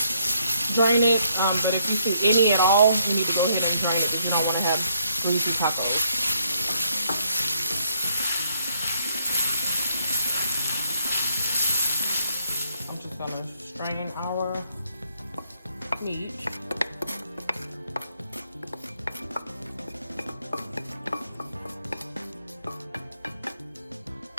drain it. But if you see any at all, you need to go ahead and drain it because you don't want to have greasy tacos. I'm just gonna strain our meat.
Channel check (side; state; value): both; inverted; correlation -0.71